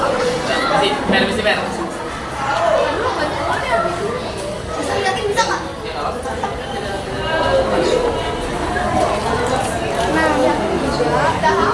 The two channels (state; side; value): identical; both; correlation 1.00